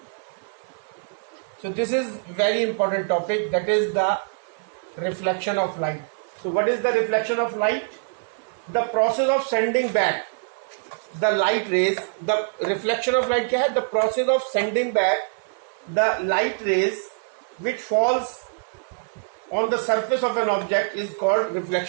So this is very important topic, that is the reflection of light. So what is the reflection of light? The process of sending back the light rays. The reflection of light क्या है? The process of sending back the light rays which falls on the surface of an object is called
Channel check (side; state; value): left; silent; digital silence